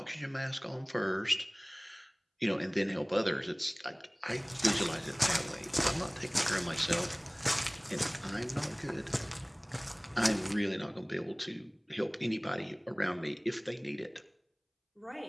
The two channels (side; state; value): both; identical; correlation 1.00